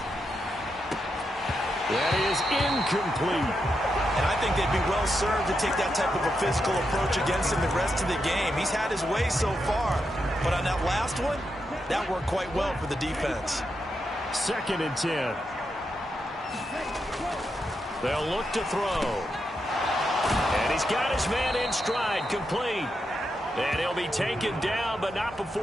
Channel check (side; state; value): both; normal; correlation 0.84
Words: That is incomplete. And I think they'd be well served to take that type of a physical approach against him the rest of the game. He's had his way so far, but on that last one, that worked quite well for the defense. 2nd and 10. They'll look to throw. And he's got his man in stride, complete. And he'll be taken down, but not